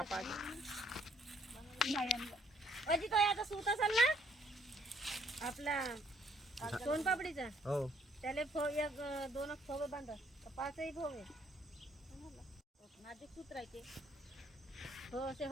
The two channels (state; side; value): normal; both; correlation 0.66